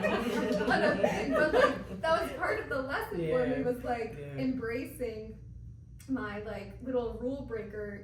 on a thing, but like that was part of the lesson for me was like embracing my like little rule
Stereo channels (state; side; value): identical; both; correlation 1.00